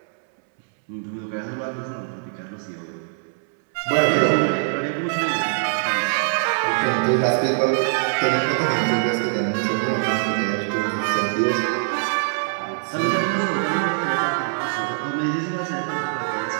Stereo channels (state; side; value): silent; left; 63 dB below the other